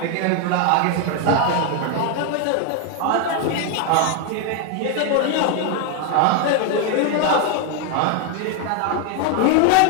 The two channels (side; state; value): both; different; correlation 0.01